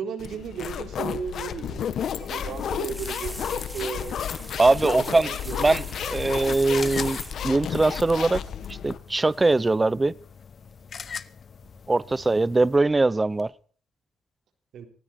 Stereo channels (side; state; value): both; normal; correlation 0.93